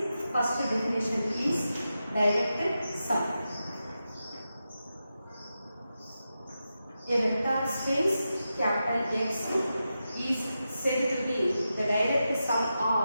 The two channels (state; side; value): inverted; both; correlation -0.90